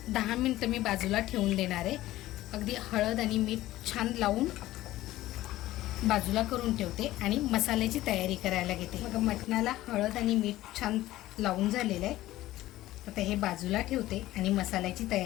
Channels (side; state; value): right; quieter; 15.8 dB